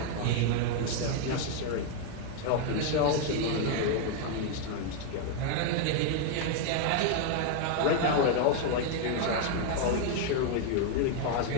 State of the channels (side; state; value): both; different; correlation 0.00